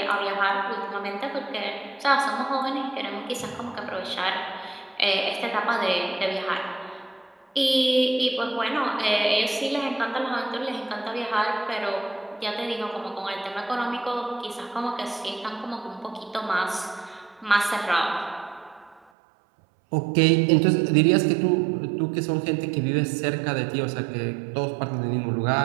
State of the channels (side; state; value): left; drops out; at 19.0 s